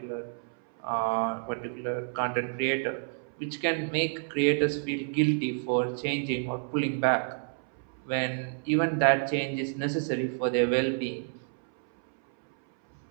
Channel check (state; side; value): silent; left; 58 dB below the other